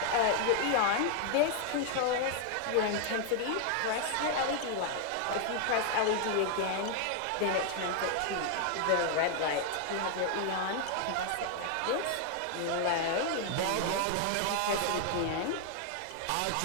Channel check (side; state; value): both; different; correlation 0.00